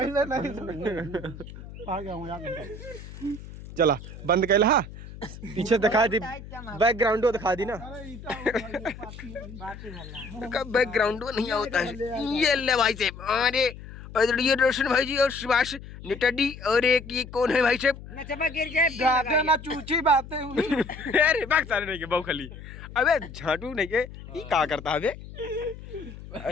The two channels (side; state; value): left; noise; hum, 14 dB below the sound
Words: नहीं आ गया हूं यार चला बंद कैला हा पीछे दिखा दी बैकग्राउंड दिखा दी ना बैकग्राउंड नहीं होता है ये ले भाई साहब अरे ये रोशन भाई जी और सुभाष नेटाडी और एक ये कौन है भाई साहब ना चूची बातें अरे बाग सारे नहीं के बहु खाली अबे झाटू नहीं के ये क्या करता है बे